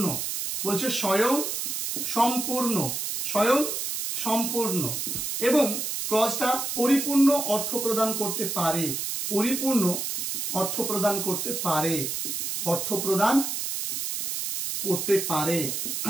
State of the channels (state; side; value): noise; right; hiss, 3 dB below the sound